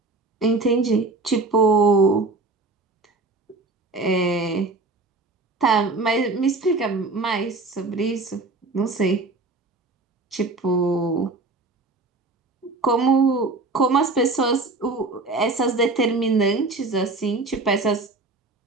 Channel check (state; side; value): quieter; left; 3.4 dB